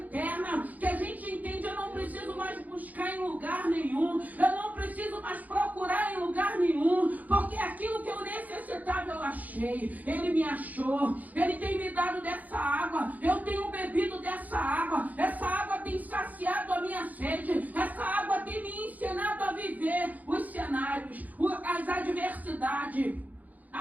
Que a gente entende: eu não preciso mais buscar em lugar nenhum. Eu não preciso mais procurar em lugar nenhum. Porque aquilo que eu necessitava eu achei. Ele me achou. Ele tem me dado dessa água. Eu tenho bebido dessa água. Essa água tem saciado a minha sede. Essa água tem me ensinado a viver os cenários, as adversidades,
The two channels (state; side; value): late; left; 0.079 ms